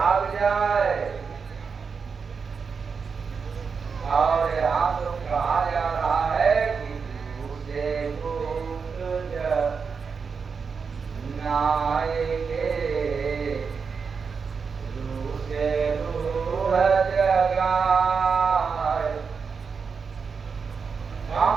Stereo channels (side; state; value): left; quieter; 5.5 dB